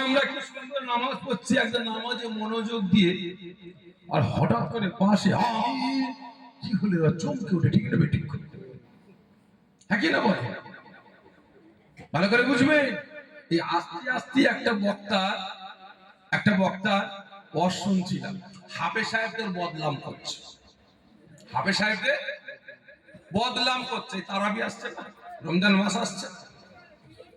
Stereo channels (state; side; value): identical; both; correlation 1.00